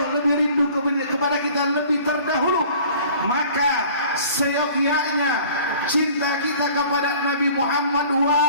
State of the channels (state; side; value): inverted; both; correlation -0.49